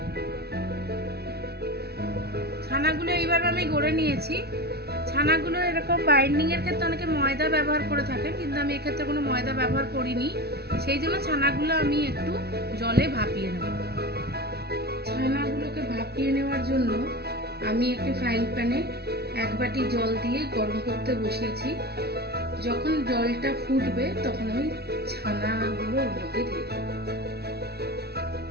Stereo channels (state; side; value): late; left; 0.47 ms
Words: ছানাগুলো এইভাবে আমি গড়ে নিয়েছি। ছানাগুলো এরকম বাইন্ডিং এর ক্ষেত্রে অনেকে ময়দা ব্যবহার করে থাকে, কিন্তু আমি এক্ষেত্রে কোনো ময়দা ব্যবহার করিনি। সেই জন্য ছানাগুলো আমি একটু জলে ভাপিয়ে নেব। ছানাগুলোকে ভাপিয়ে নেওয়ার জন্য আমি একটি ফ্রাইং প্যানে 1 বাটি জল দিয়ে গরম করতে বসিয়েছি। যখন জলটা ফুটবে তখন আমি ছানাগুলো ওর মধ্যে দিয়ে দেব।